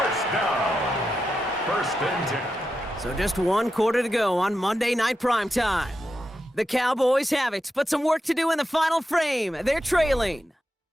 down. First and 10. So just 1 quarter to go on Monday Night Primetime. The Cowboys have it, but some work to do in the final frame. They're trailing.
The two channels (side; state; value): both; normal; correlation 0.88